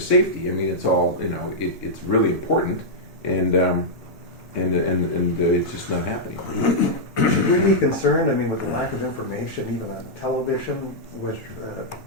safety. I mean, it's all, it's really important. And and it's just not happening. Should we be concerned, I mean, with the lack of information, even on television, with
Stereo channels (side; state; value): both; normal; correlation -0.07